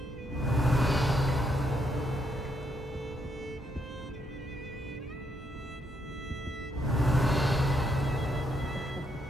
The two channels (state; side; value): normal; both; correlation 0.76